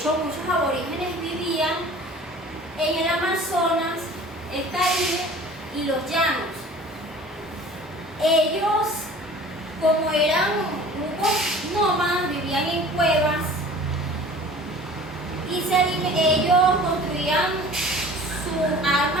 muchos aborígenes vivían en el Amazonas, el Caribe y los llanos. Ellos, como eran grupos nómadas, vivían en cuevas y ellos construían sus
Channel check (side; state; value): both; normal; correlation 0.45